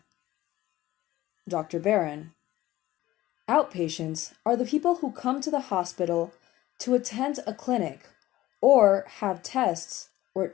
Dr. Barron: Outpatients are the people who come to the hospital to attend a clinic or have tests or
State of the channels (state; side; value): quieter; right; 15.8 dB